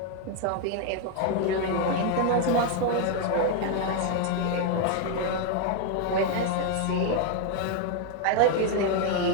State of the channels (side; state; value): both; different; correlation 0.01